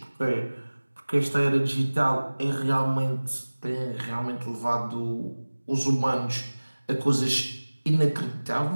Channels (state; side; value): inverted; both; correlation -1.00